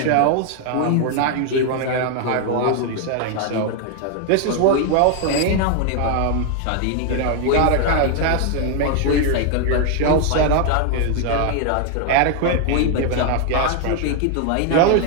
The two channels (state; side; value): different; both; correlation 0.00